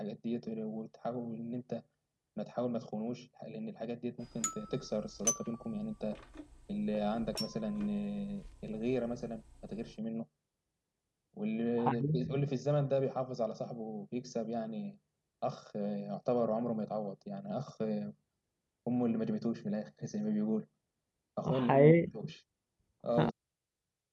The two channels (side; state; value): both; identical; correlation 1.00